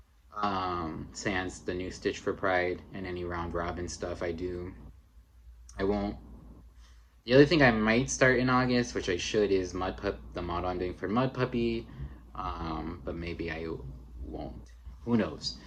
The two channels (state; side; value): identical; both; correlation 1.00